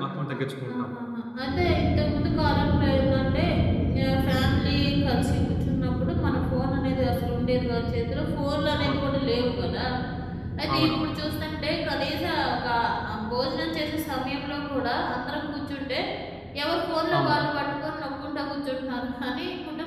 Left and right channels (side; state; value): both; identical; correlation 1.00